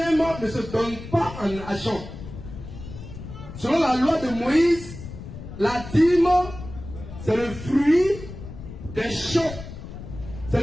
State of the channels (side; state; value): left; noise; rumble, 12 dB below the sound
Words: ne se donne pas en argent. Selon la loi de Moïse, la dîme, c'est le fruit des champs. C'est